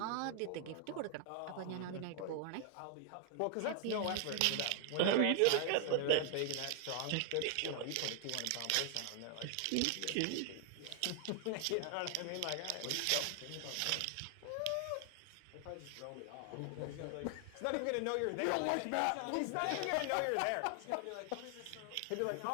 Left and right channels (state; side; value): different; both; correlation 0.00